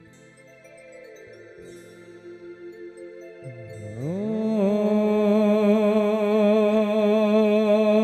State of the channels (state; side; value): identical; both; correlation 1.00